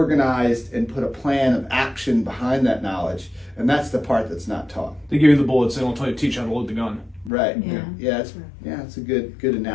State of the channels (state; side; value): drops out; right; at 7.3 s